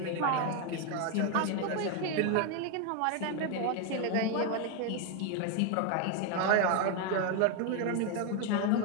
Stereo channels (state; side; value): different; both; correlation 0.01